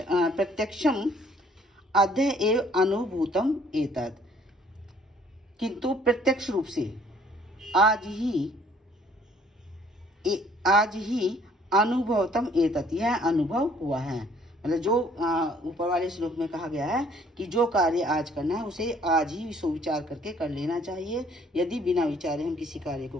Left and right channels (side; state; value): both; normal; correlation 0.60